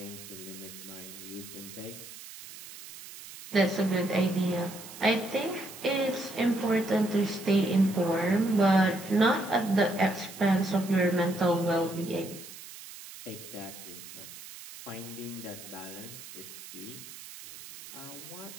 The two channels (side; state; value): right; noise; hiss, 15 dB below the sound